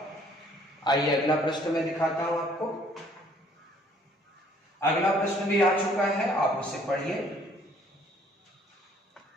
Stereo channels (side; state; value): both; normal; correlation 0.60